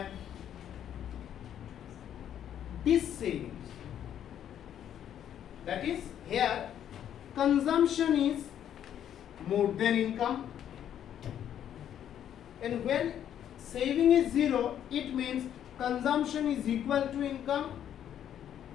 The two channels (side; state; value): right; quieter; 10.1 dB